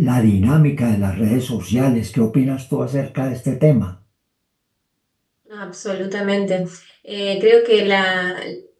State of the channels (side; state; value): both; identical; correlation 1.00